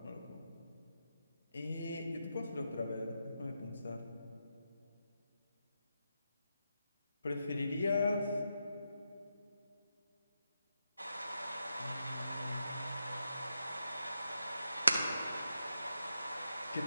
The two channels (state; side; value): inverted; both; correlation -0.86